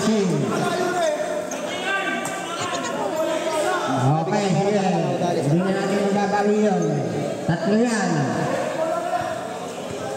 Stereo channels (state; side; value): identical; both; correlation 1.00